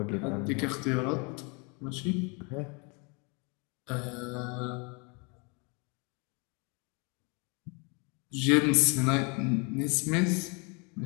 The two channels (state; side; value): quieter; right; 32.1 dB